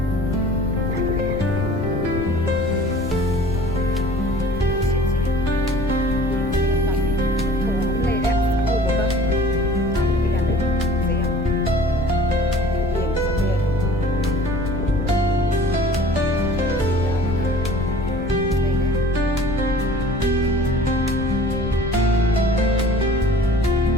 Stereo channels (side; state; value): left; noise; rumble, 8 dB below the sound